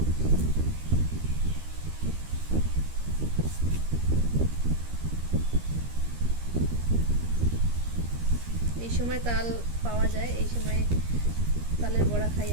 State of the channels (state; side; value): late; left; 13 ms